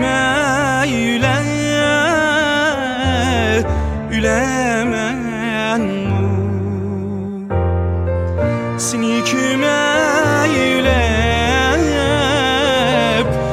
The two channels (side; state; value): both; identical; correlation 1.00